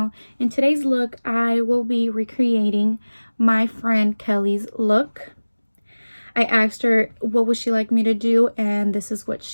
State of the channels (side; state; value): both; inverted; correlation -1.00